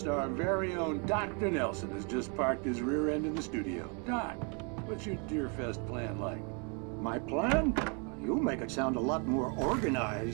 our very own Dr. Nelson has just parked his rear end in the studio. Doc, what's your Deerfest plan like? My plan? You make it sound a lot more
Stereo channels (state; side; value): quieter; left; 35.8 dB